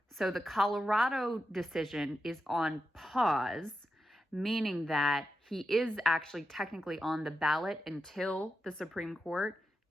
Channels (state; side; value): normal; both; correlation 0.88